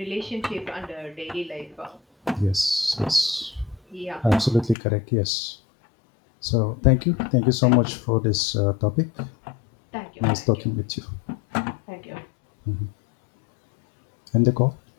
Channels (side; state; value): right; drops out; at 4.8 s